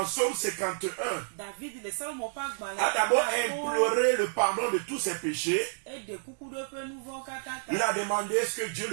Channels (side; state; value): left; silent; digital silence